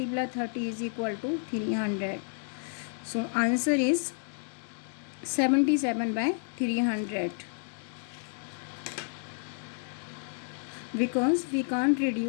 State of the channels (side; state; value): right; silent; 57 dB below the other